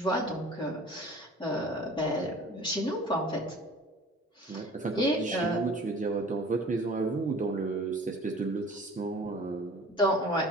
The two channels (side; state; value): both; normal; correlation 0.45